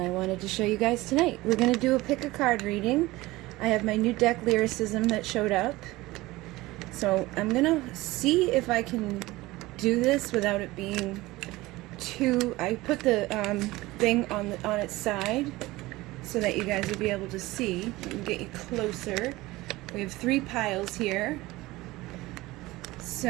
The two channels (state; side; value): quieter; left; 19.4 dB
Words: wanted to show you guys tonight. We're going to do a pick a card reading. I have my new deck Lyricism that showed up. So I'm going to see if I can do this without it being too... I put the thing on its side so that you guys will be able to see. Let me get you closer. We have 3 piles here.